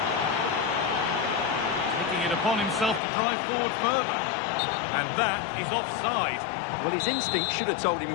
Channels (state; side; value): drops out; right; at 3.0 s